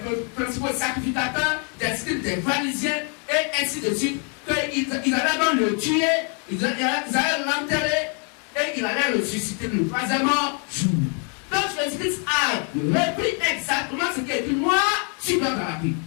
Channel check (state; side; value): quieter; right; 39.9 dB